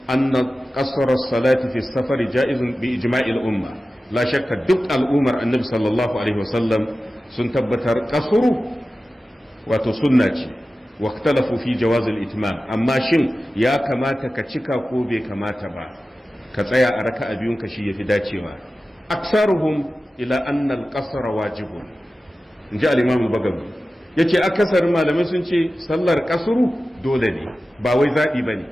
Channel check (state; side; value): normal; both; correlation 0.95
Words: anna qasr as-salati fi as-safar ja'izun bi ijma'i al-umma la shakka duk al'ummar annabi sallallahu alaihi wasallam sun tabbatar kasuru wato sunna ce واختلفوا في جواز الاتمام amma shin ya kamata ka cika ko bai kamata ba ka tsaya a raka'a biyun ka shi yafi dacewa aksaruhum ila anna al-qasr wajibun inji al-imam al-bagawi yace akasarin malamai sun ce sallar kasru dole ne ba wai zabi bane